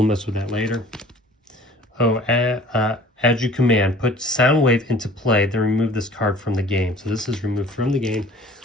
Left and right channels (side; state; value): both; normal; correlation 0.49